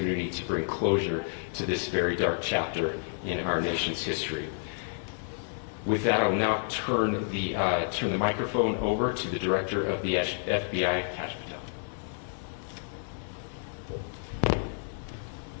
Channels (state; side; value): silent; right; digital silence